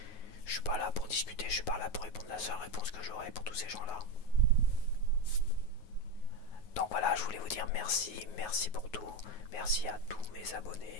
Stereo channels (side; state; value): right; late; 9.4 ms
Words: Je suis pas là pour discuter, je suis pas là pour répondre la seule réponse que j'aurai pour tous ces gens-là. Donc voilà, je voulais vous dire merci, merci pour tout. Merci à tous mes